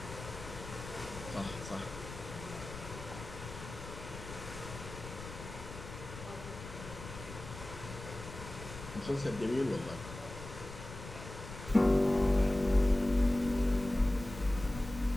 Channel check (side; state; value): left; noise; rumble, 12 dB below the sound